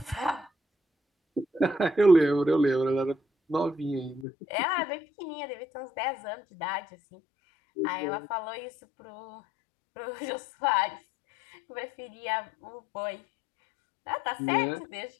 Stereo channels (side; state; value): right; drops out; at 4.2 s